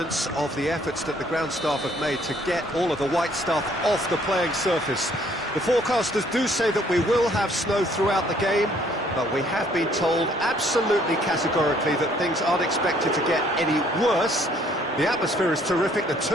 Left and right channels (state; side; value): normal; both; correlation 0.63